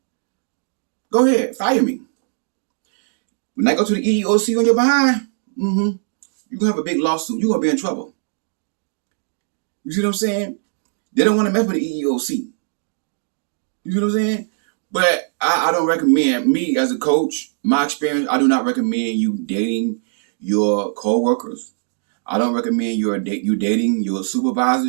Go ahead. Fire me. When I go to the EEOC on your behind, you're going to have a big lawsuit. You're going to be in trouble. You see what I'm saying? They don't want to mess with the EEOC. You see what I'm saying? But I don't recommend, me as a coach, my experience, I do not recommend you dating your co-workers. I don't recommend you dating your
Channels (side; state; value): left; silent; digital silence